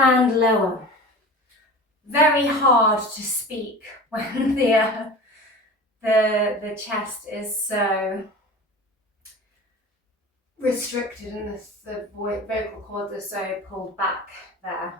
lower. Very hard to speak when the chest is so restricted and the vocal cords are so pulled back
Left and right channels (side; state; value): both; normal; correlation 0.35